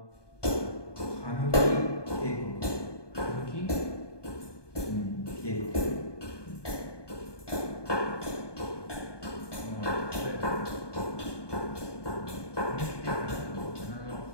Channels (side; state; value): right; late; 1.2 ms